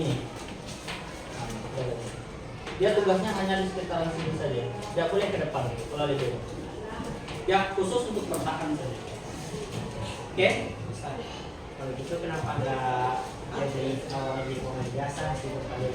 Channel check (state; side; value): identical; both; correlation 1.00